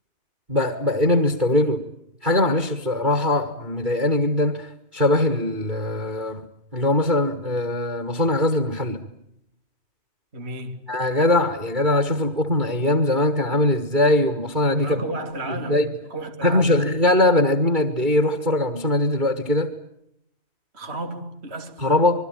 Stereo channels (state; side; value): late; left; 2.3 ms